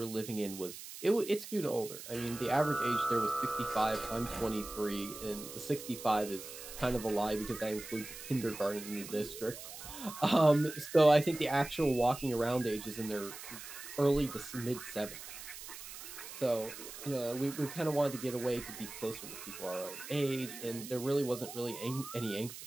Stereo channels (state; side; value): noise; right; hiss, 12 dB below the sound